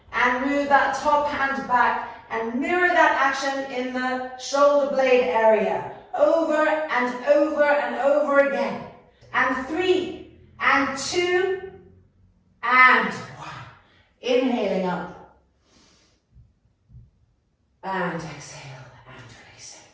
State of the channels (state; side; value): identical; both; correlation 1.00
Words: and move that top hand back and mirror that action in the shoulder blade area, over and over and over again. And 3, and 2, and 1. Inhaling up. And exhale and releasing.